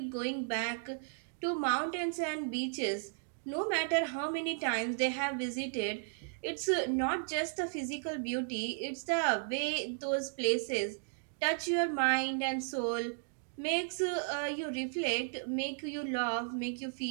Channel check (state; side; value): silent; left; digital silence